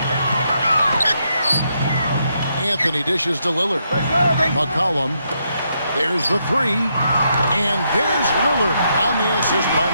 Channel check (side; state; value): both; inverted; correlation -0.78